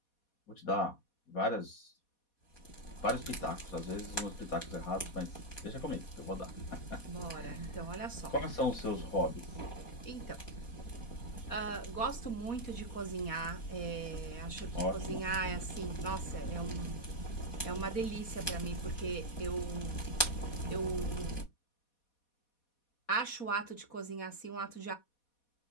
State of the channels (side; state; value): right; late; 4.2 ms